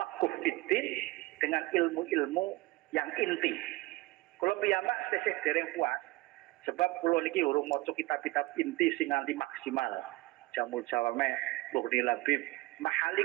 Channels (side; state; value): left; quieter; 21.4 dB